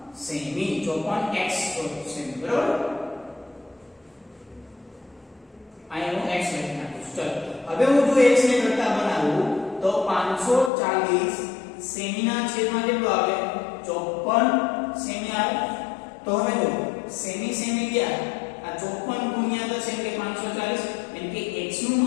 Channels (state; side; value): drops out; right; at 10.7 s